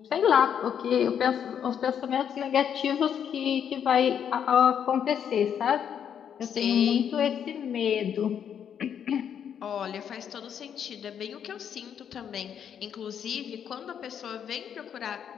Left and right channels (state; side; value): quieter; right; 8.5 dB